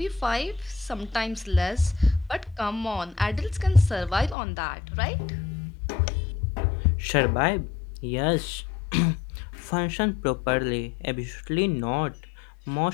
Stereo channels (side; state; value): right; drops out; at 4.4 s